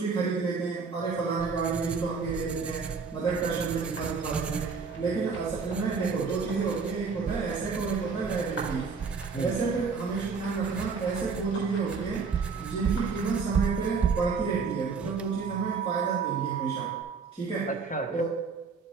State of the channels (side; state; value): left; quieter; 5.1 dB